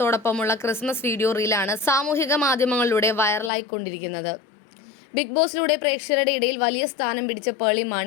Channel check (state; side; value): drops out; right; at 3.5 s